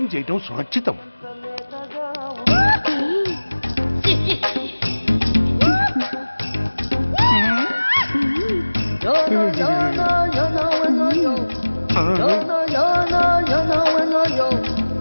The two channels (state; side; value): inverted; both; correlation -1.00